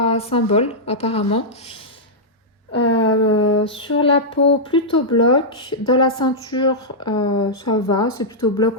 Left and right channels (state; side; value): normal; both; correlation -0.09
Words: symboles, apparemment. Sur la peau, plutôt bloc. Dans la ceinture, ça va, c'est plutôt